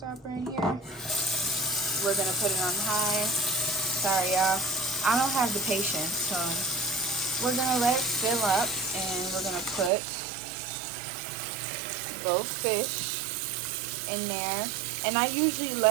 in here. We're gonna put it on high. Sorry y'all, I don't have the patience, so we're gonna let it fill up, and we're gonna put both fish in there. And I usually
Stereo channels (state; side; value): drops out; left; at 9.9 s